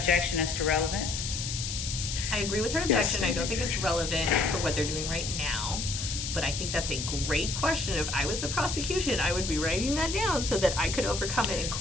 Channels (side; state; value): left; noise; hiss, 4 dB below the sound